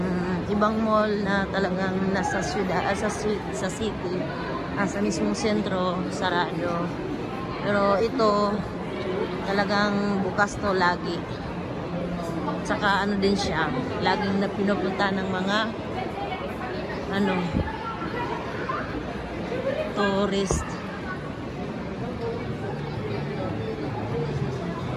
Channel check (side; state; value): both; identical; correlation 1.00